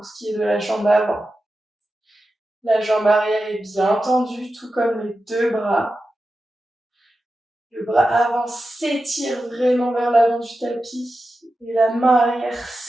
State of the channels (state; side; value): normal; both; correlation 0.92